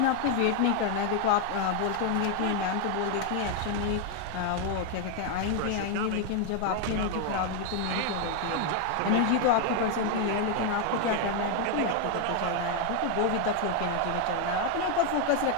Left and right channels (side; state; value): both; different; correlation 0.01